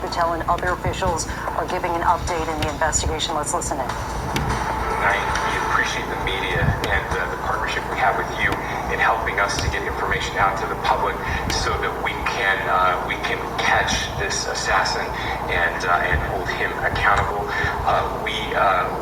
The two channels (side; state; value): both; identical; correlation 1.00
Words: and other officials are giving an update in the investigation. Let's listen in. We appreciate the media and the partnership we have with you in helping us to get information out to the public so that we can catch this assassin and hold him accountable.